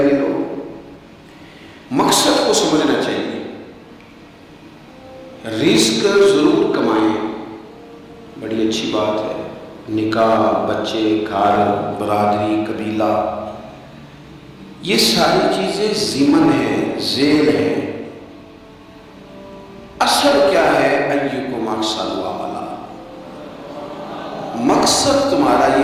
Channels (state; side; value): identical; both; correlation 1.00